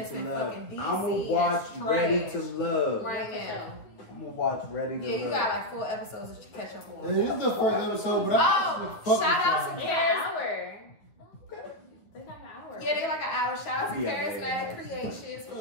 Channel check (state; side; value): late; right; 9.2 ms